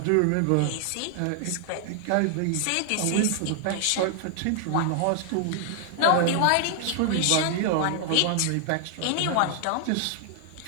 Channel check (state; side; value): different; both; correlation 0.00